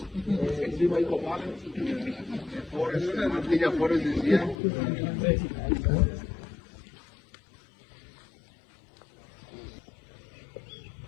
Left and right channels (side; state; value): right; drops out; at 4.5 s